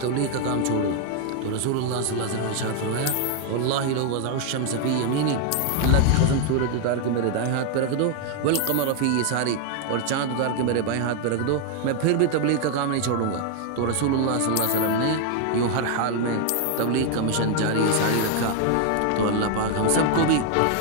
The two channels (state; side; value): different; both; correlation 0.00